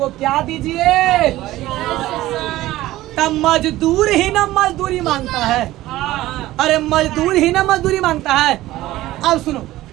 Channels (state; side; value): quieter; left; 16.2 dB